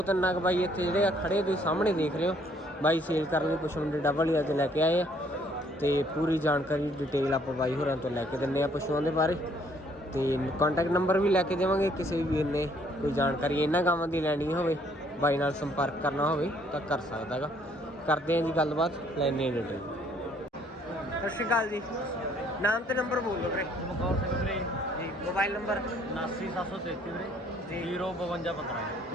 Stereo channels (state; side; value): normal; both; correlation 0.64